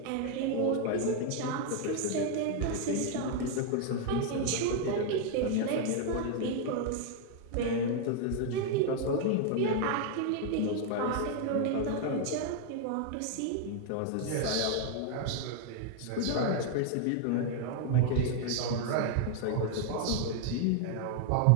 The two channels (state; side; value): different; both; correlation 0.00